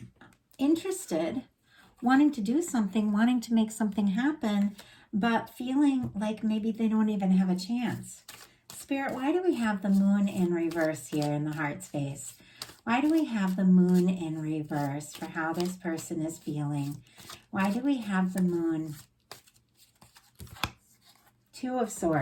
interested, wanting to do something, wanting to make something happen, but feeling like maybe they don't even have a chance. Spirit, why do we have the moon in reverse here in the heart space? Why do we have the moon in reverse for how this person is feeling? Why do we have the moon? Two of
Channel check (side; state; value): both; identical; correlation 1.00